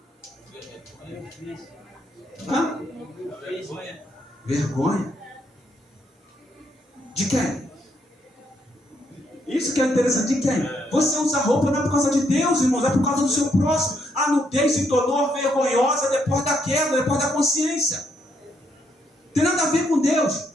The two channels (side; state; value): both; normal; correlation 0.75